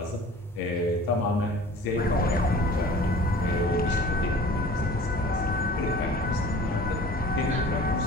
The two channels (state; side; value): normal; both; correlation 0.44